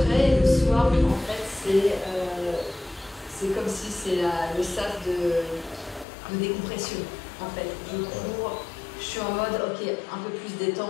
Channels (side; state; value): right; drops out; at 6.1 s